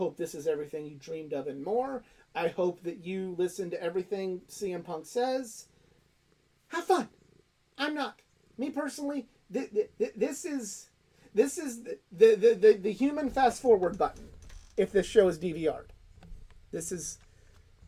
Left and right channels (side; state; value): both; identical; correlation 1.00